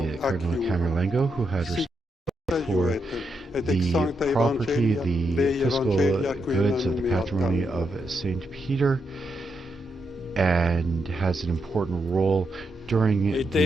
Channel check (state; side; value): normal; both; correlation 0.83